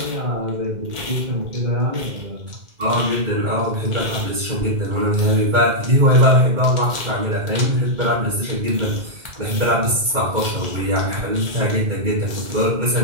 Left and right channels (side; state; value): left; late; 2.1 ms